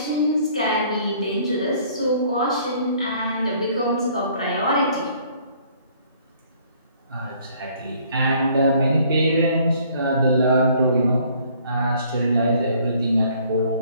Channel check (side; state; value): both; inverted; correlation -0.60